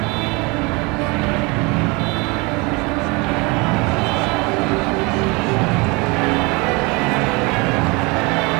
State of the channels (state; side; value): quieter; left; 27.2 dB